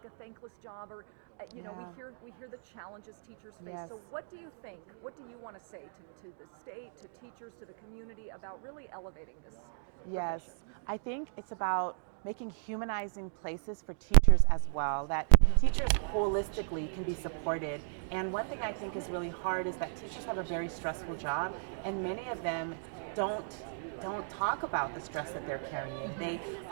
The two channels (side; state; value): left; silent; digital silence